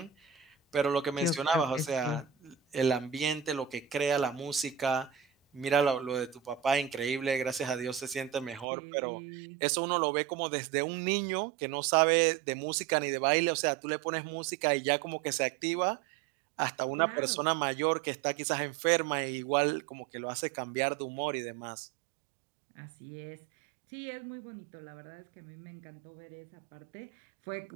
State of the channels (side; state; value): left; drops out; at 8.7 s